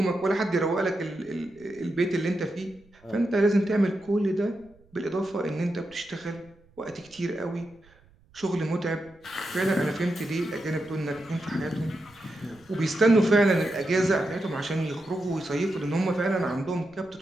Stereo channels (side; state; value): right; noise; rumble, 29 dB below the sound